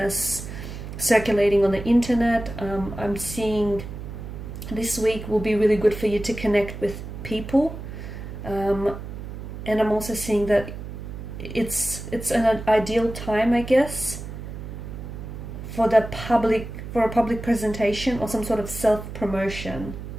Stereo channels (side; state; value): right; noise; hum, 9 dB below the sound